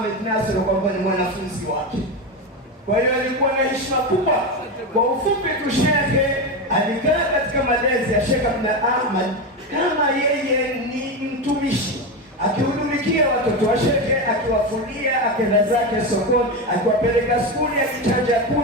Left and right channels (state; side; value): normal; both; correlation 0.16